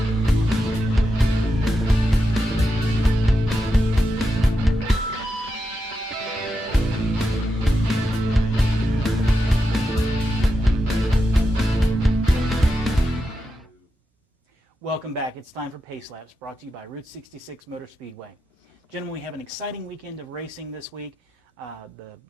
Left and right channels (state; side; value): normal; both; correlation 0.87